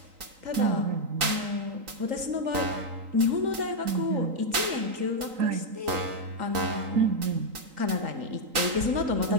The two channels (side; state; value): left; late; 3.8 ms